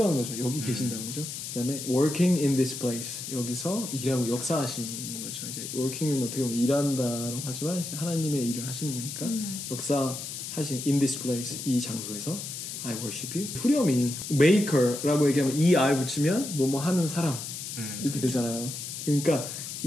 거죠. 여기 계신다는 거죠. 그 다음에 working in this place. 여기서 일하고 역사하시는 거죠. 이제 working은 어떻게 보면 일한다라고 하지만 이제 하나님의 일을 하시는 거니까 역사하신 in this place. 이 장소에서 I worship you. 후렴이 maker라고 얘기하면 ER 붙이면 뭐뭐 하는 사람 이렇게 되잖아요. 그러니까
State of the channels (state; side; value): noise; left; hiss, 7 dB below the sound